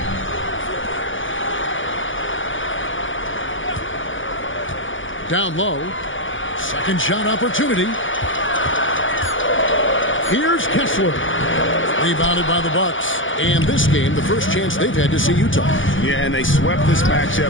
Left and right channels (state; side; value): late; right; 0.57 ms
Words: Down low. Second shot opportunity. Here's Kessler. Rebounded by the Bucks. And this game, the first chance they've had to see Utah. Yeah, and they swept this